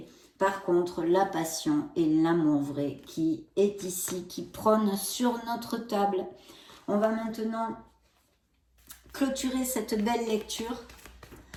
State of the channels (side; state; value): both; identical; correlation 1.00